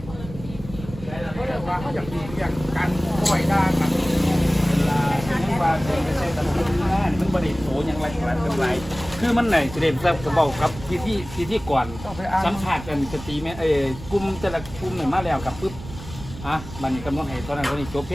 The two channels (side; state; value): right; noise; rumble, 13 dB below the sound